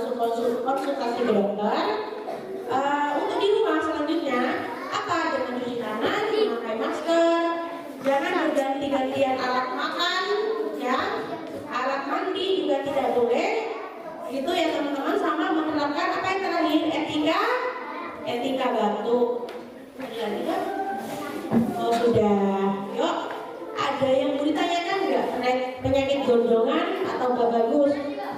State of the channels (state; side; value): identical; both; correlation 1.00